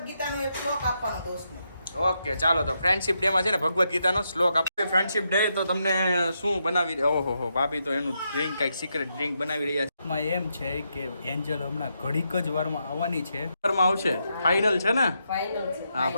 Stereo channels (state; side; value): inverted; both; correlation -0.82